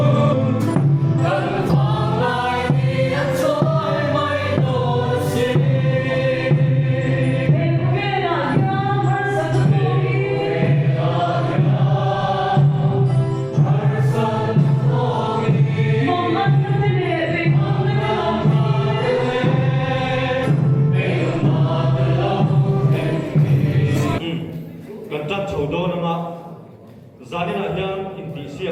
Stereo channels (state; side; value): identical; both; correlation 1.00